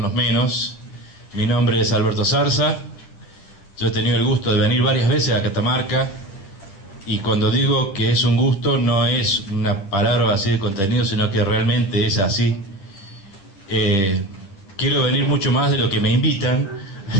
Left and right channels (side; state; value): right; late; 10 ms